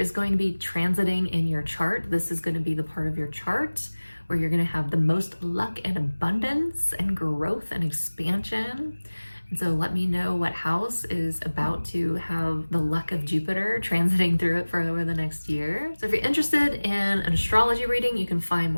going to be transiting in your chart. This is going to be the part of your chart where you're going to have the most luck and abundance and growth and expansion. And so let me know what house is about to have the luck of Jupiter transiting through it for over the next year. So if you're interested in an astrology reading, you can find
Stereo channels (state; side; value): inverted; both; correlation -1.00